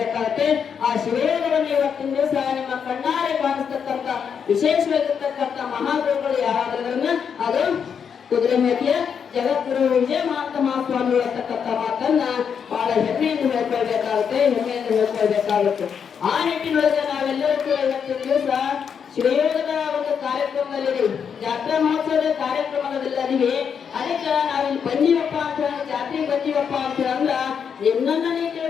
ಆ ಶಿವಯೋಗವನ್ನು ಇವತ್ತಿನ ದಿವಸ ನಿಮ್ಮ ಕಣ್ಣಾರೆ ಕಾಣಿಸ್ತಕ್ಕಂಥ ವಿಶೇಷವಾಗಿರ್ತಕ್ಕಂಥ ಮಹಾಗುರುಗಳು ಯಾರಾದ್ರನ್ನ ಅದು ಕುದುರೆಮೂರ್ತಿಯ ಜಗದ್ಗುರು ವಿಜಯ ಮಹಾಂತ ಮಹಾಸ್ವಾಮಿಗಳು ಅಂತಕ್ಕಂಥ ಮಾತನ್ನ ಬಹಳ ಹೆಮ್ಮೆಯಿಂದ ಹೇಳ್ಕೊಳ್ಬೇಕಾಗುತ್ತೆ, ಹೆಮ್ಮೆಯಿಂದ ಹೇಳ್ಕೊಳ್ಬೇಕಾಗುತ್ತೆ. ಆ ನಿಟ್ಟಿನೊಳಗೆ ನಾವೆಲ್ಲರೂ ಕೂಡ ಇವತ್ತಿನ ದಿವಸ ಶಿವಯೋಗದ ಒಂದು ಕಾರ್ಯಕ್ರಮದಲ್ಲಿ ಜಾತ್ರಾ ಮಹೋತ್ಸವದ ಕಾರ್ಯಕ್ರಮದಲ್ಲಿದ್ದೀವಿ. ಅದಕ್ಕೆ ನಾವಿಲ್ಲಿ ಬಂದೀವಪ್ಪ ಅಂತ ಜಾತ್ರೆಗೆ ಬಂದೀವಪ್ಪ ಅಂತ ಅಂದ್ರ ನಿನ್ನನ್ನ ನೀ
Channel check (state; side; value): quieter; right; 7.1 dB